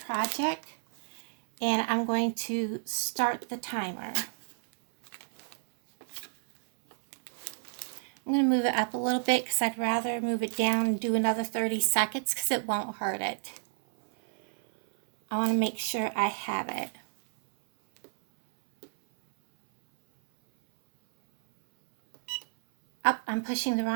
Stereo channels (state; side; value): silent; left; 58 dB below the other